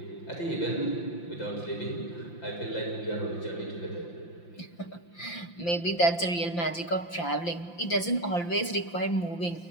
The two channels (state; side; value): late; right; 5.8 ms